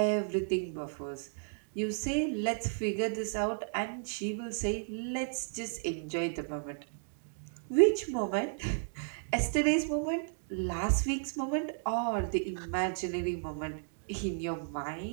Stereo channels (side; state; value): left; silent; digital silence